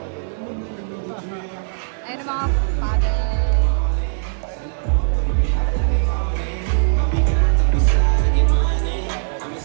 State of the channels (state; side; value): silent; left; digital silence